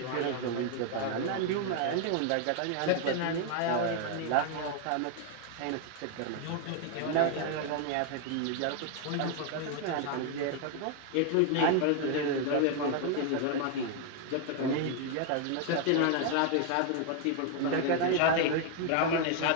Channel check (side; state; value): both; different; correlation 0.00